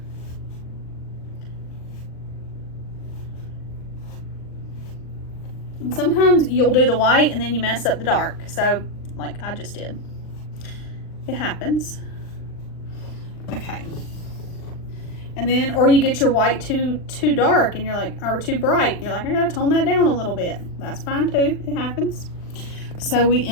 And sometimes you'll do the white and then you mess up the dark. So, like I just did. It happens. Okay. And then, or you get your white too dark and you're like, or too bright. And you're like, I gotta tone that down a little bit. That's fine too. It happens. So we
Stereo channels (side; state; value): right; late; 39 ms